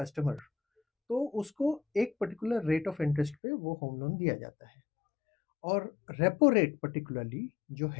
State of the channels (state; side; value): drops out; right; at 3.4 s